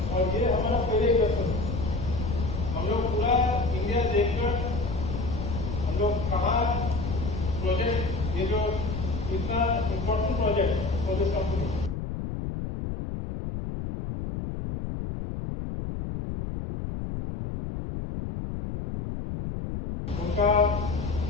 और ये हमारा पहले इन्वेस्टमेंट। हम लोग पूरा इंडिया देखकर हम लोग कहाँ प्रोजेक्ट, ये जो इतना important project for this company, उनका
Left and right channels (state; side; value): noise; left; rumble, 4 dB below the sound